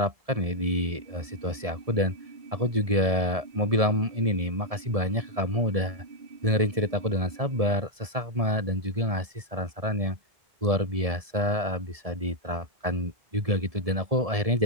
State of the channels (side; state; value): left; late; 1.7 ms